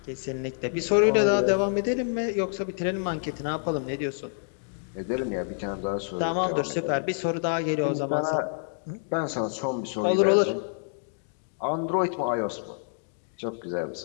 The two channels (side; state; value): right; silent; digital silence